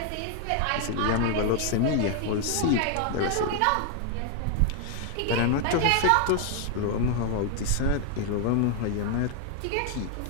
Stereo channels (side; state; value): both; different; correlation 0.00